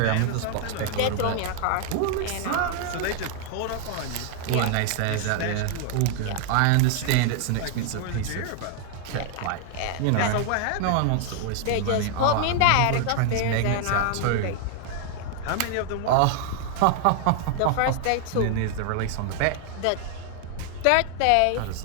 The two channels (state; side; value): different; both; correlation 0.00